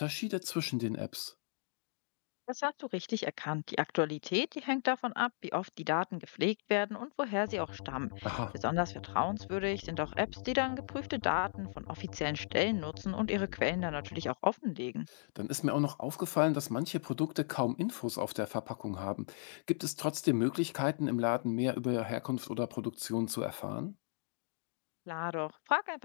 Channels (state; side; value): silent; right; digital silence